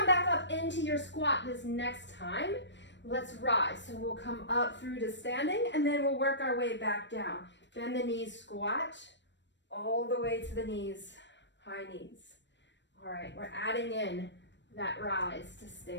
back up into your squat this next time, let's rise. So we'll come up through to standing, and then we'll work our way back down. Bend the knees, squat, all the way to the knees, high knees. All right, we're adding in that rise to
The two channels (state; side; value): late; right; 0.53 ms